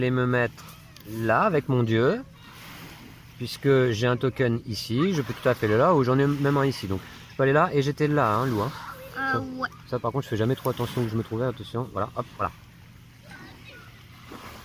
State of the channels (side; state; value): both; identical; correlation 1.00